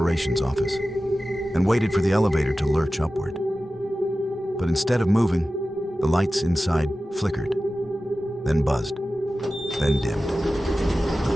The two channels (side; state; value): both; normal; correlation 0.95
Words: office, and waited for the elevator to lurch upward. But instead of moving, the lights inside flickered, then buzzed, then dimmed. The